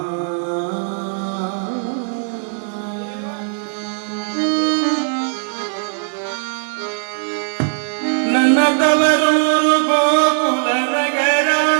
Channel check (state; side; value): silent; left; digital silence